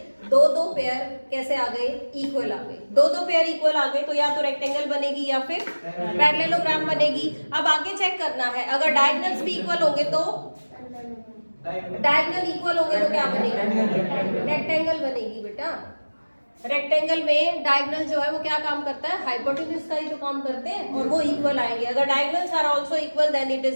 2-2 पेयर कैसे आ गए, इक्वल आ गए। 2-2 पेयर इक्वल आ गए तो या तो रेक्टेंगल बनेगी या फिर पैरेललोग्राम बनेगी। अब आगे चेक करना है, अगर डायगोनल्स भी इक्वल होंगे तो डायगोनल इक्वल होंगे तो क्या बनेगी, रेक्टेंगल बनेगी बेटा। रेक्टेंगल में डायगोनल जो है वो क्या काम करता है, हाइपोटेन्यूज का ही तो काम करते हैं, और वो इक्वल आएंगे। अगर diagonals are also equal then it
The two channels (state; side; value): inverted; both; correlation -1.00